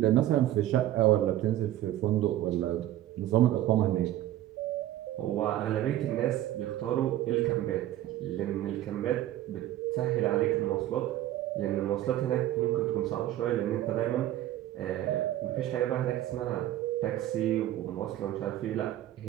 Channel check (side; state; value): left; quieter; 13.6 dB